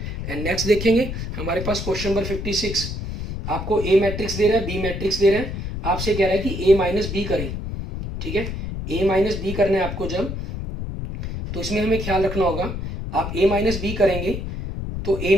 एंड नेक्स्ट देखेंगे हमारे पास क्वेश्चन नंबर 56, आपको ए मैट्रिक्स दे रहा है, बी मैट्रिक्स दे रहा है, आपसे कह रहा है कि ए माइनस बी करें, ठीक है। ए माइनस बी करना है आपको जब, तो इसमें हमें ख्याल रखना होगा, आप ए माइनस बी करेंगे तो ए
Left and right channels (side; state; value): left; noise; rumble, 5 dB below the sound